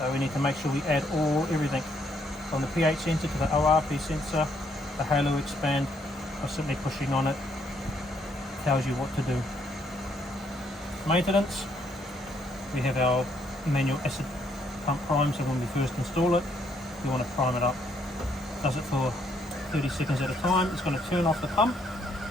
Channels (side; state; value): both; normal; correlation 0.71